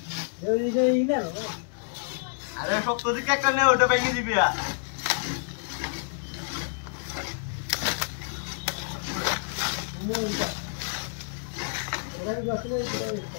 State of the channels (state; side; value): silent; right; digital silence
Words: আরে শক্ত দিকে একটা নে ওটা ভেঙে দিবি